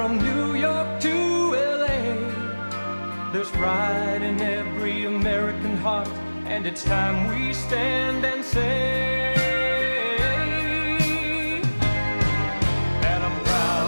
New York to LA, there's pride in every American heart, and it's time we stand and say, and I'm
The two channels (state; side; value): inverted; both; correlation -1.00